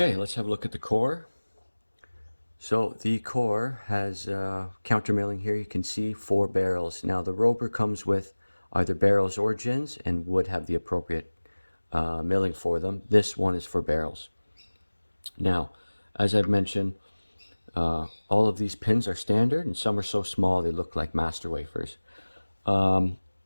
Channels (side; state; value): both; inverted; correlation -1.00